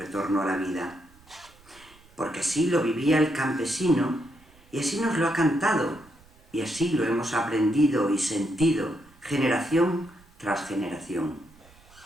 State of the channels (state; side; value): noise; right; rumble, 27 dB below the sound